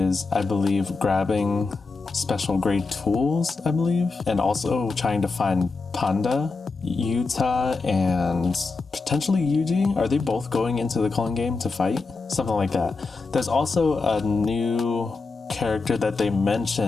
I believe, grabbing special grade tools, I believe, and also trying to find Panda. Yuta and potentially Yuji, are they both going into the Culling game to fight? Something like that. There's also a new character that they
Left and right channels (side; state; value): right; quieter; 4.1 dB